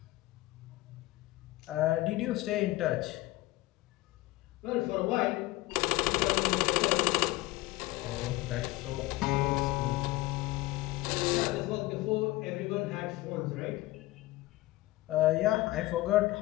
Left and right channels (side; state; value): right; quieter; 18.7 dB